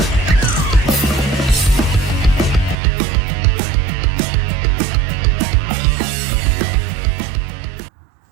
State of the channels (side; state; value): left; drops out; at 2.8 s